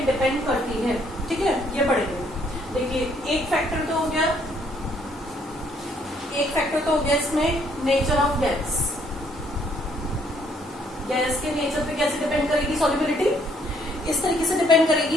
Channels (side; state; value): both; normal; correlation 0.67